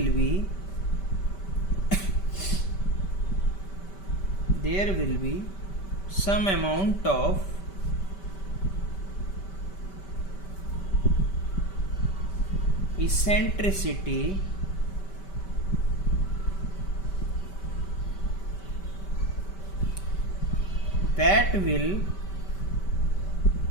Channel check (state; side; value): late; right; 5.2 ms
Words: be some amount of eccentricity that will